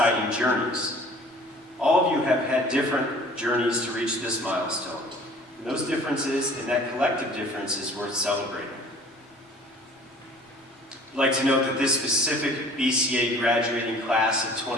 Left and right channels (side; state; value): both; normal; correlation 0.49